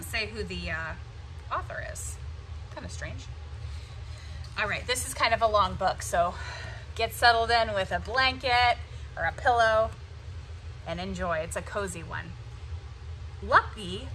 say who the author is. Kind of strange. All right, this is kind of a long book, so get settled in with a blanket or a pillow and enjoy. It's a cozy one. Lucky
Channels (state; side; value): identical; both; correlation 1.00